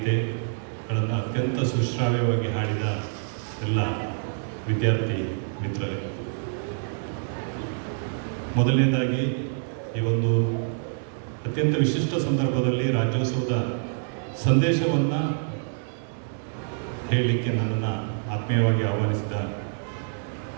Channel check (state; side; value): silent; left; digital silence